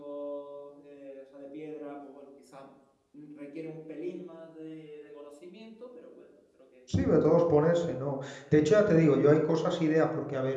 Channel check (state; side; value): identical; both; correlation 1.00